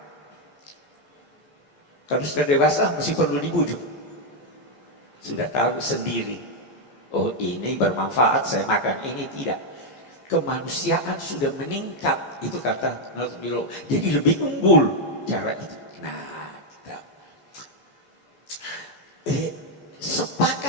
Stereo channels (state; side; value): late; right; 14 ms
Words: Kalau sudah dewasa masih perlu dibujuk. Sudah tahu sendiri, oh ini bermanfaat saya makan, ini tidak. Kemanusiaan sudah meningkat, itu kata Nazmilo. Jadi lebih unggul cara itu. Nah, kita